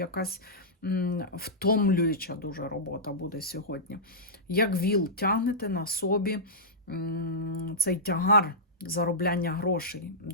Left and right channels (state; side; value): normal; both; correlation -0.14